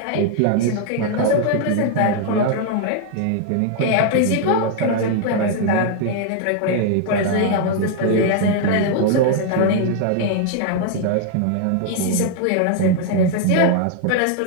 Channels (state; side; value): different; both; correlation 0.00